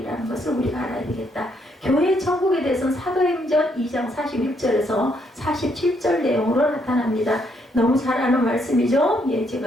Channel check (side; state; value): both; normal; correlation 0.73